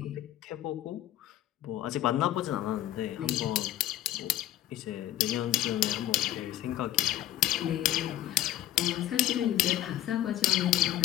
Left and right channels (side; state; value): right; quieter; 13.4 dB